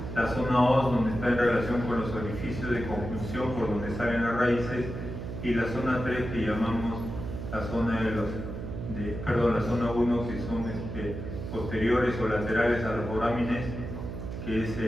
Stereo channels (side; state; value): right; noise; hum, 7 dB below the sound